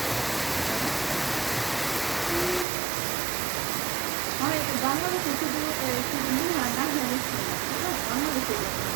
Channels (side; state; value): left; drops out; at 2.7 s